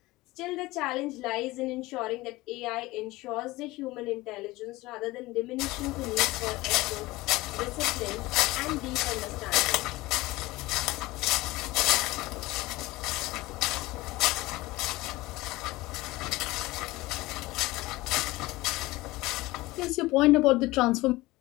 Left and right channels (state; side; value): quieter; right; 19.8 dB